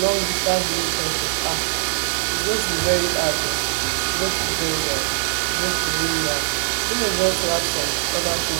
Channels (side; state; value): left; silent; digital silence